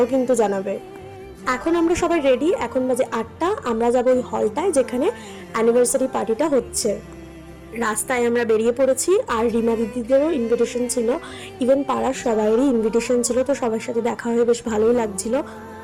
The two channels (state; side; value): identical; both; correlation 1.00